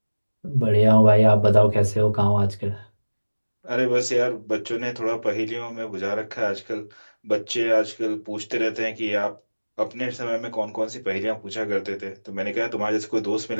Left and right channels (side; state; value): both; inverted; correlation -1.00